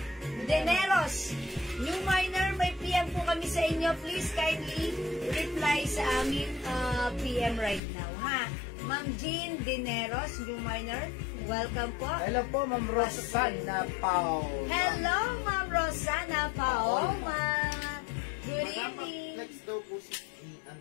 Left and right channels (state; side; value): drops out; right; at 7.8 s